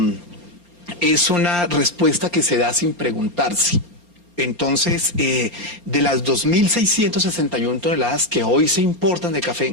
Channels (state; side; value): late; right; 4.3 ms